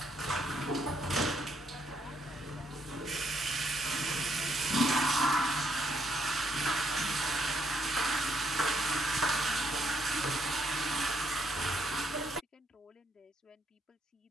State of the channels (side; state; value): both; normal; correlation 0.73